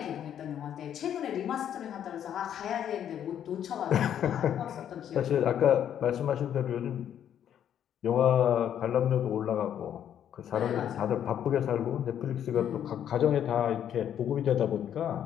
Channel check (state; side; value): quieter; right; 9.8 dB